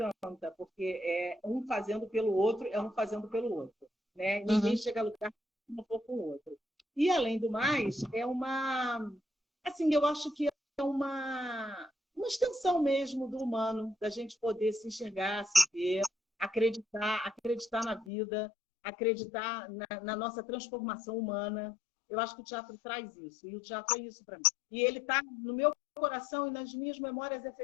porque é um fazendo pelo outro, é um fazendo pelo outro. Né? Ninguém chega a lugar se não for com o outro. E, além do mais, assim, eu acho que é uma extensão mesmo do humano, da gente poder se enxergar, se ver, acreditar na vida, acreditar na nossa transformação humana. Eu acho que o teatro traz isso, e o teatro é isso para mim. E ele está no meu coração e nas minhas memórias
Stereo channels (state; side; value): drops out; right; at 18.1 s